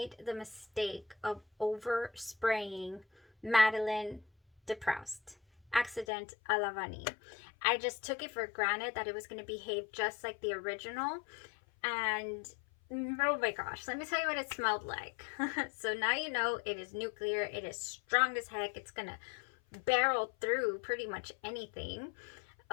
the mistake of overspraying Madeleine de Proust Accident à la Vanille. I just took it for granted that it was going to behave just like the original. And oh my gosh, let me tell you what it smelled like. So now you know it is nuclear. It is strong as heck. It's going to barrel through pretty much anything.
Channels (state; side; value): drops out; right; at 6.1 s